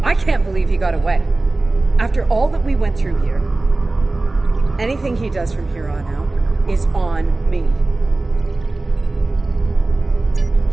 I can't believe he got away. After all that we went through here, anything he does from here on out is on me.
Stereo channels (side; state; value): left; quieter; 3.1 dB